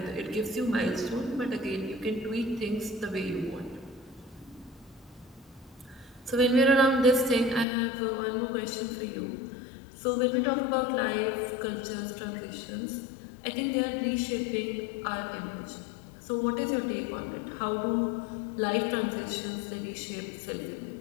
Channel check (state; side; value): drops out; right; at 7.7 s